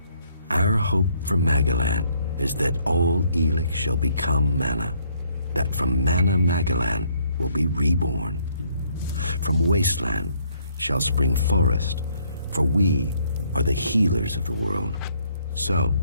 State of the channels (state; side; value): inverted; both; correlation -0.67